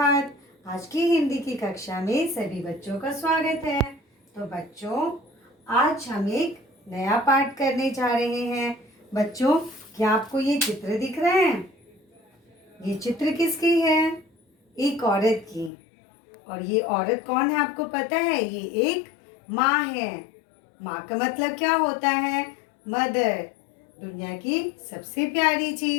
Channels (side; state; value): right; drops out; at 15.7 s